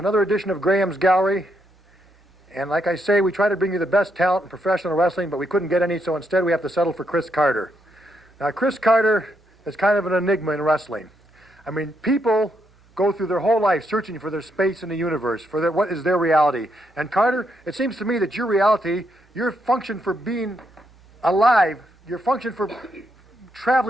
edition of Graham's Gallery. And like I say, we try to bring you the best talent in professional wrestling, but we couldn't get any, so instead we have to settle for Chris Carter. Now, Chris Carter is kind of an enigma in wrestling. I mean, people go through their whole life searching for their space in the universe, for what is their reality. And Carter, it seems to me that your reality, your function for being alive, your function for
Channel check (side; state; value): both; normal; correlation 0.78